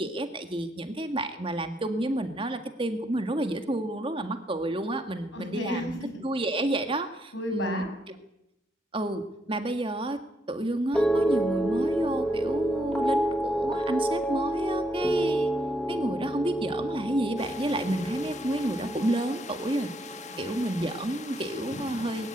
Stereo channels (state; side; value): normal; both; correlation 0.75